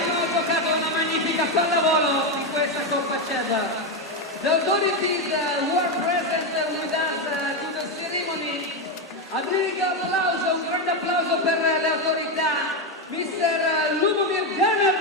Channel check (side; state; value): both; normal; correlation 0.09